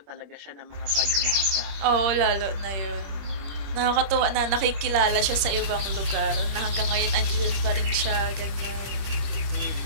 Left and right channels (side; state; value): left; late; 26 ms